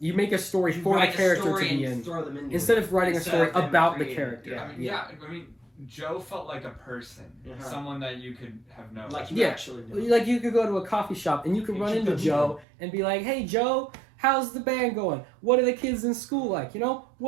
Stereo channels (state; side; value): drops out; left; at 12.7 s